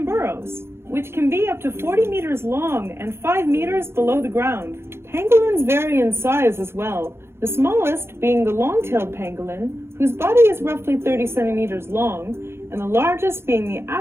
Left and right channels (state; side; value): late; left; 0.12 ms